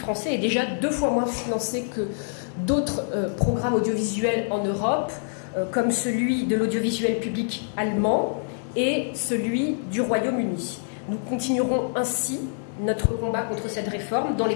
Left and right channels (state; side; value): silent; right; digital silence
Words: est déjà 2 fois moins financé que d'autres programmes audiovisuels en Europe, comme celui de l'audiovisuel public allemand et celui du Royaume-Uni. Nous continuerons ainsi notre combat contre cette réforme dans les